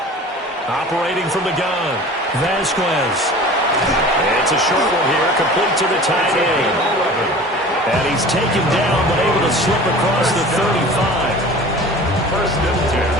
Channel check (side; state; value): both; normal; correlation 0.41